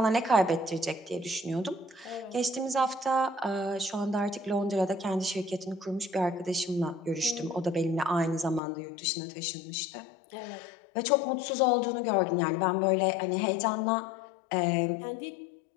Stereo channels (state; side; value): drops out; right; at 8.6 s